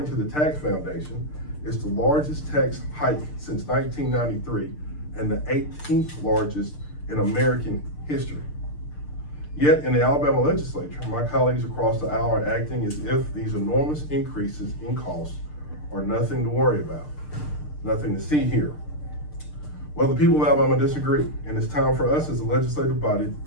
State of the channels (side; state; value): right; late; 6.7 ms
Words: to the Tax Foundation, it's the largest tax hike since 1993 and the 18th largest in American history. Yet in the Alabama legislature, my colleagues across the aisle are acting as if these enormous increases in costs are nothing to worry about, nothing to see here. Well, the people of Alabama disagree, and it's time for us as a legislative body